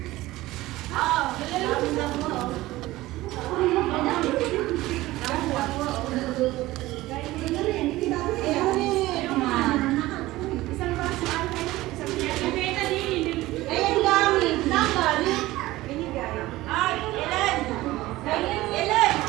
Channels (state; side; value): quieter; left; 17.7 dB